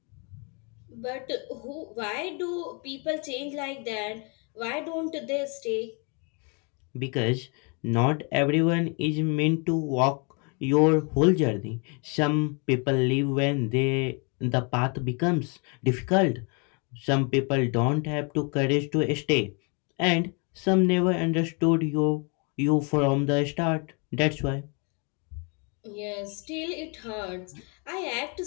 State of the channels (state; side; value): quieter; right; 34.6 dB